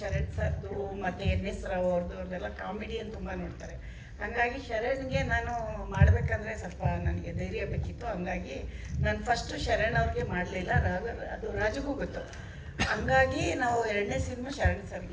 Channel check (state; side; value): identical; both; correlation 1.00